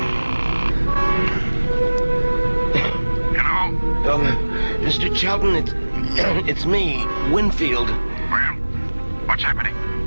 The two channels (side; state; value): both; inverted; correlation -1.00